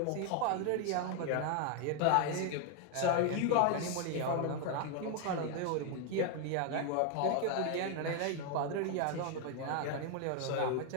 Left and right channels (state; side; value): different; both; correlation 0.01